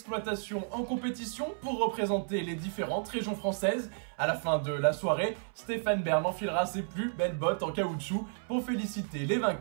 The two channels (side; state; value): left; silent; 56 dB below the other